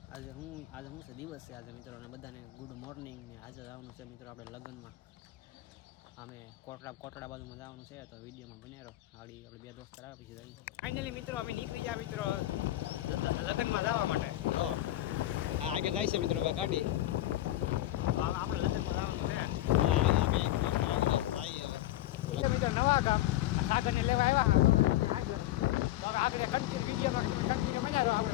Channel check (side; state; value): right; quieter; 15.0 dB